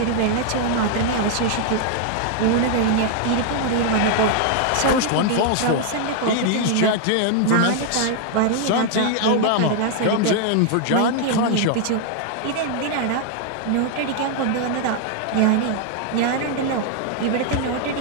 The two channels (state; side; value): different; both; correlation 0.00